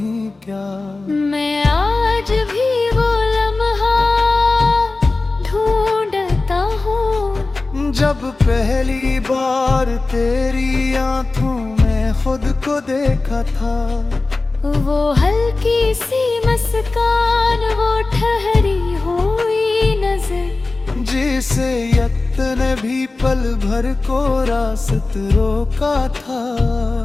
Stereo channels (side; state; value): right; quieter; 3.4 dB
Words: क्या। मैं आज भी वो लम्हा ढूंढता हूँ, जब पहली बार तेरी आंखों में खुद को देखा था। वो हल्की सी मुस्कान, वो ठहरी हुई नजर, जिसे यक्त ने भी पल भर को रास्त रोका था।